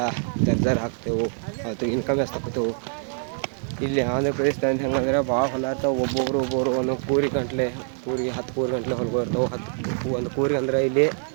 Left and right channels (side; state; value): left; silent; 62 dB below the other